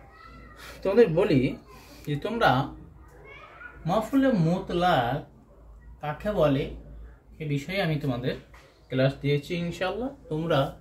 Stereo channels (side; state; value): both; identical; correlation 1.00